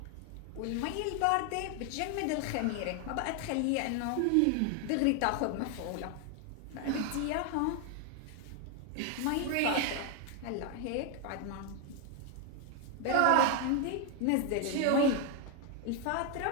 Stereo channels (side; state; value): both; different; correlation 0.01